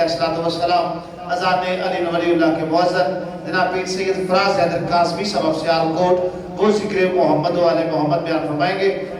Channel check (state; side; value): identical; both; correlation 1.00